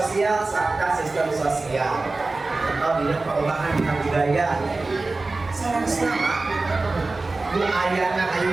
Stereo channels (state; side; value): quieter; left; 3.4 dB